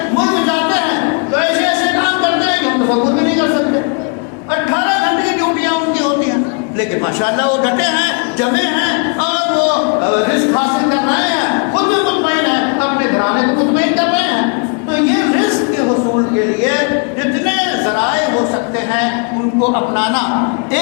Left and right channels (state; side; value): quieter; right; 37.3 dB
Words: ملک جاتے ہیں تو ایسے ایسے کام کرتے ہیں کہ ہم تصور بھی نہیں کر سکتے۔ 18 گھنٹے کی ڈیوٹیاں ان کی ہوتی ہیں، لیکن ماشاءاللہ وہ ڈٹے ہیں، جمے ہیں، اور وہ رزق حاصل کر رہے ہیں، خود بھی مطمئن ہیں، اپنے گھرانے کو مطمئن کر رہے ہیں۔ تو یہ رزق کے حصول کے لیے جتنے ذرائع ہو سکتے ہیں ان کو اپنانا،